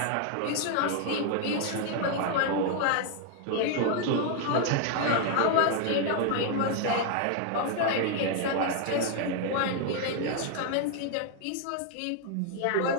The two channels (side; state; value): both; different; correlation 0.00